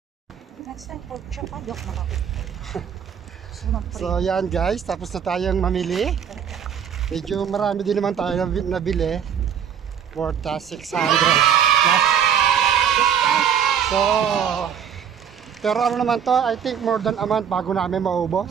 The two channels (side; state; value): left; quieter; 8.2 dB